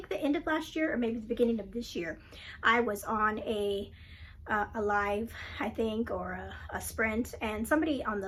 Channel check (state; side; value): identical; both; correlation 1.00